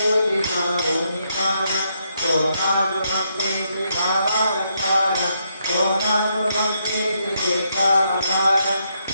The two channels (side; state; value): both; inverted; correlation -0.77